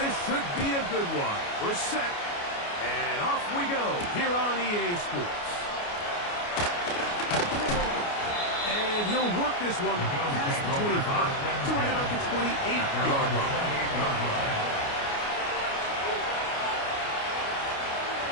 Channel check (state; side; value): late; right; 29 ms